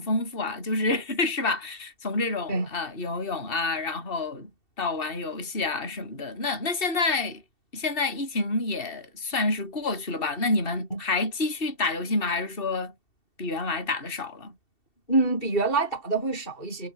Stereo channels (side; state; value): right; late; 2.7 ms